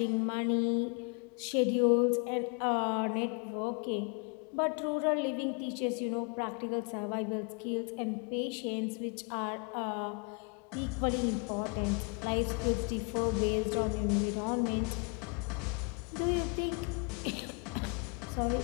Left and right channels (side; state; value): right; quieter; 35.2 dB